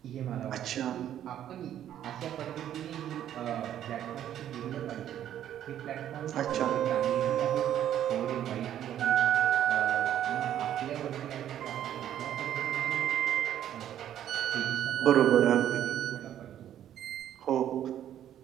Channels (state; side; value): quieter; left; 10.9 dB